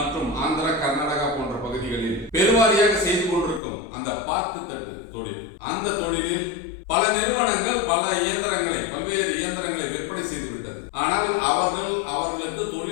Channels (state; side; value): drops out; right; at 3.6 s